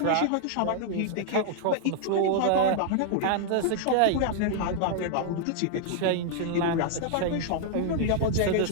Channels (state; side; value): different; both; correlation -0.01